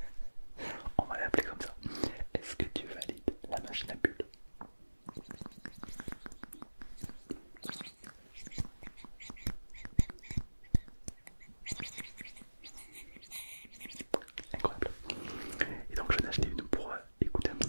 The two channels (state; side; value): inverted; both; correlation -1.00